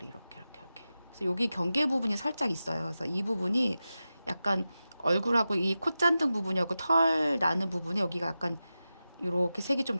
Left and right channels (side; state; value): both; inverted; correlation -0.93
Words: 이렇게. 그래서 여기 경계 부분이 살짝 있어요. 그래서 이 부분이 약간 얼굴하고 이 콧잔등 부분하고 털 나는 부분에 여기가 약간 이렇게 색이 좀